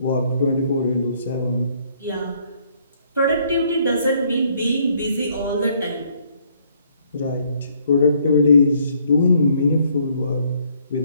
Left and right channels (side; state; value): both; inverted; correlation -0.67